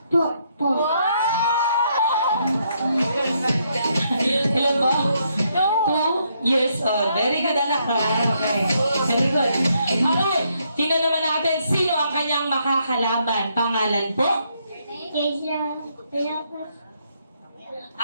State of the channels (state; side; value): inverted; both; correlation -0.75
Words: Ilan po? 2 years old. Very good, anak. Okay. Very good. Alright, tingnan naman natin sino ang kanyang makakalaban. Pangalan po?